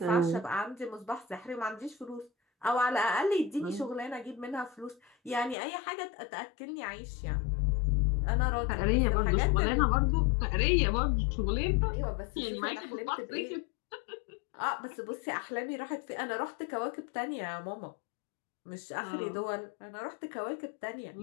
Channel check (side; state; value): right; drops out; at 5.6 s